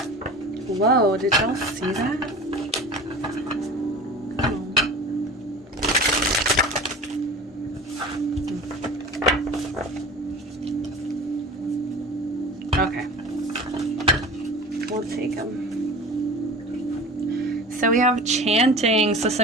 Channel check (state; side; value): normal; both; correlation 0.37